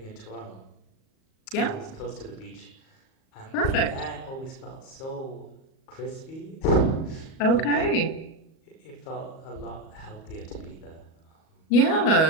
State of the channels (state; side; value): late; right; 38 ms